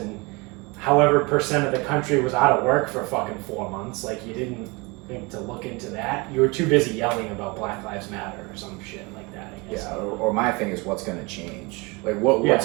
however percent of the country was out of work for fucking 4 months. Like, you didn't think to look into that. You were too busy yelling about Black Lives Matter or some shit like that, I guess. Yeah. Or my thing is, what's going to change? Like,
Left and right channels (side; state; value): left; quieter; 26.7 dB